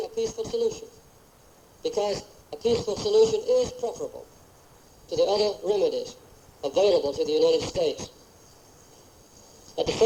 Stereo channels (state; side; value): identical; both; correlation 1.00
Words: a peaceful solution, because a peaceful solution is preferable to the other remedies available to the United States. At the